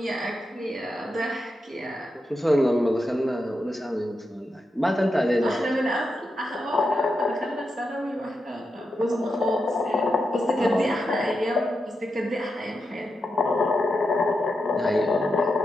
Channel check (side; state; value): both; normal; correlation 0.87